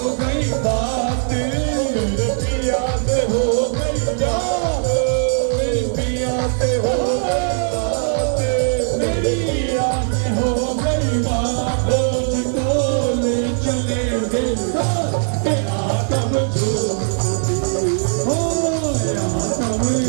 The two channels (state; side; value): silent; left; digital silence